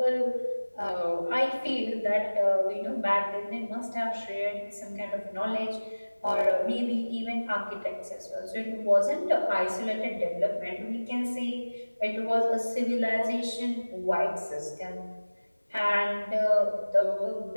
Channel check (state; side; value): inverted; both; correlation -1.00